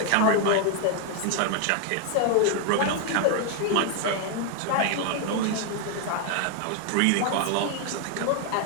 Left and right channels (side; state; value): both; different; correlation 0.00